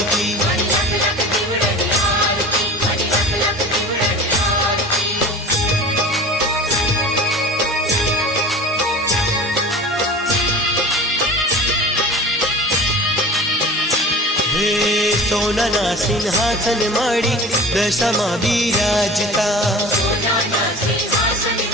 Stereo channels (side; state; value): both; normal; correlation 0.38